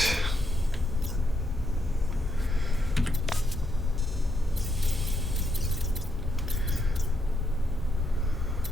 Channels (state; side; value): normal; both; correlation 0.79